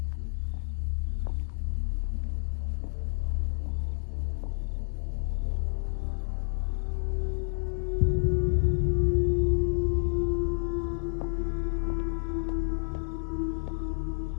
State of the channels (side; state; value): right; silent; digital silence